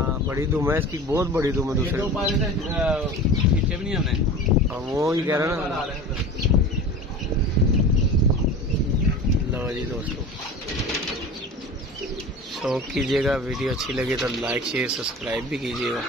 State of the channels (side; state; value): both; normal; correlation 0.35